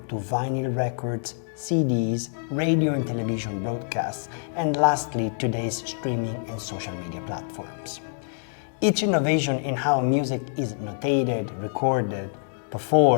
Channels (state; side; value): silent; right; digital silence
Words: to vinyl records, CDs, radio and television broadcasts, and lastly, today's streaming and social media platforms. Each innovation in how music is notated, recorded,